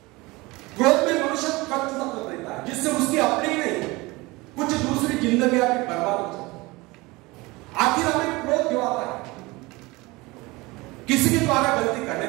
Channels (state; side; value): quieter; left; 22.7 dB